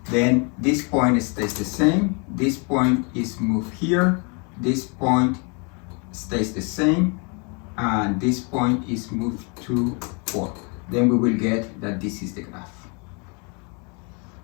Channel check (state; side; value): quieter; right; 34.3 dB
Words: Then this point stays the same. This point is moved here. This point stays the same. And this point is moved to 4. Then we will get that this is the graph.